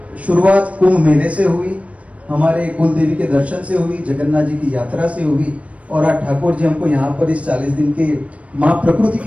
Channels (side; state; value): left; late; 0.065 ms